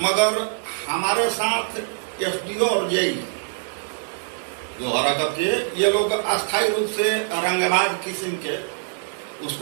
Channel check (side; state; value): left; silent; digital silence